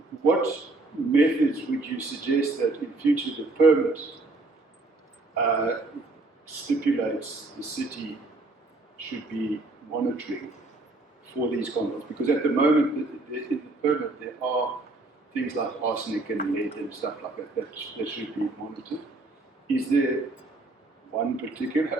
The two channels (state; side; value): quieter; left; 3.1 dB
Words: what methods would you suggest that in future the permit stipulates the city should be monitoring for these compounds? Because at the moment, in the permit, there are things like arsenic and lead and stuff like that should be monitored. Is there one